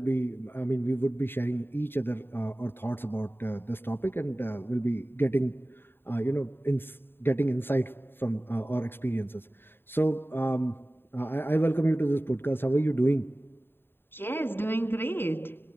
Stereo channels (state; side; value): late; right; 0.10 ms